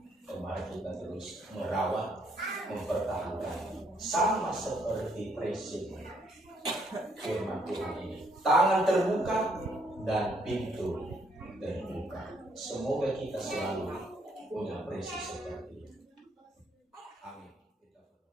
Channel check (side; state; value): both; normal; correlation 0.70